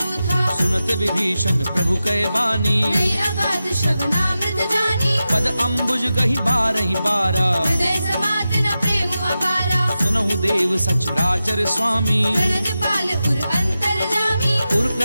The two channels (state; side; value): inverted; both; correlation -0.92